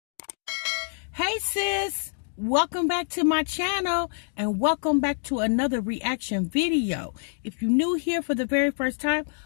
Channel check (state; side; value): silent; right; digital silence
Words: sis, welcome back to my channel and welcome back to another reaction video. If you're new here for the very first time,